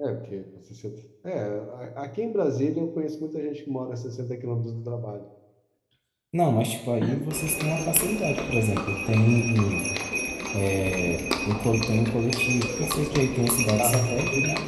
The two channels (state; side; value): identical; both; correlation 1.00